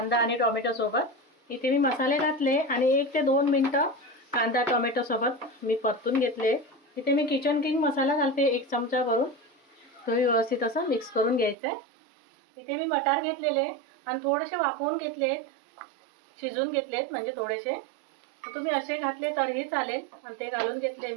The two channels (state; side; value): drops out; left; at 11.6 s